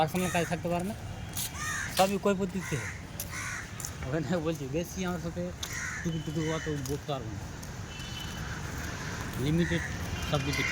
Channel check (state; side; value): identical; both; correlation 1.00